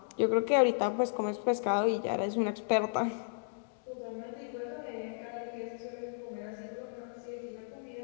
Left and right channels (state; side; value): silent; right; digital silence